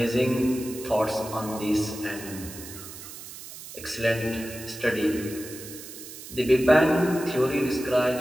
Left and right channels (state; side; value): noise; right; hiss, 13 dB below the sound